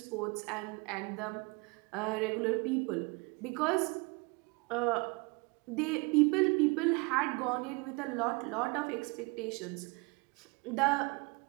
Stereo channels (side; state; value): left; quieter; 29.1 dB